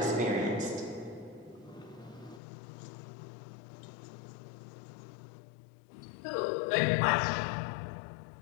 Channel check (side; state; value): right; drops out; at 2.4 s